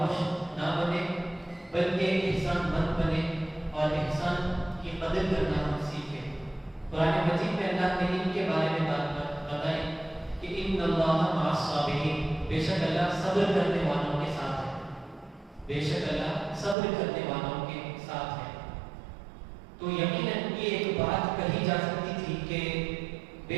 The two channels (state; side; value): drops out; left; at 16.8 s